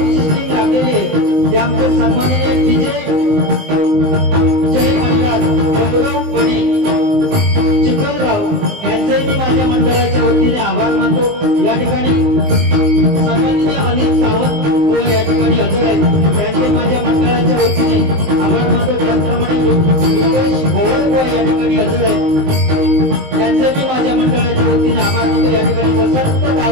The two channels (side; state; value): left; late; 19 ms